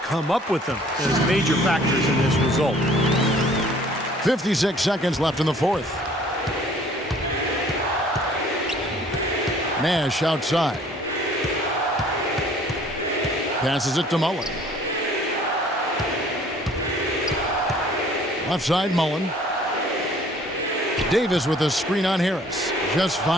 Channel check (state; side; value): normal; both; correlation 0.55